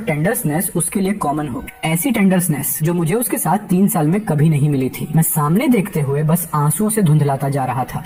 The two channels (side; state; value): both; identical; correlation 1.00